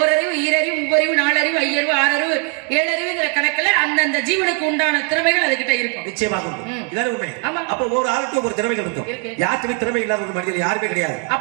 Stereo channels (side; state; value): left; quieter; 37.6 dB